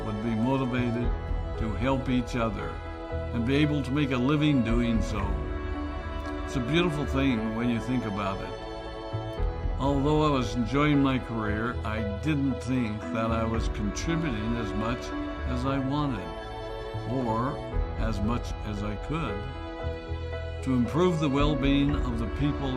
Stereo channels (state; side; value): identical; both; correlation 1.00